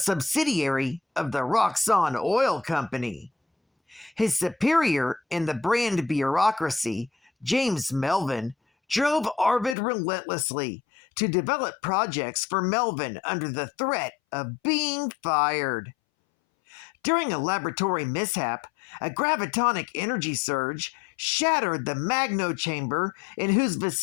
of the Roxxon Oil Company. His superior in the Brand bureaucracy, James Melvin, drove Arvid relentlessly to develop projects for Melvin under the threat of being fired. During a laboratory mishap, a gravitonic energy surge shattered the magno chamber in whose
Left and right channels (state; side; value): drops out; right; at 9.8 s